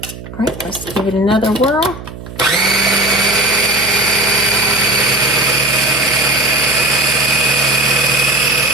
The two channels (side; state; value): right; noise; hum, 13 dB below the sound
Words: right, let's give it another whirl.